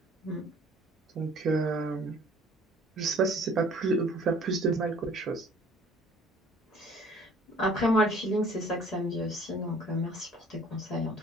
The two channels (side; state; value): both; normal; correlation 0.53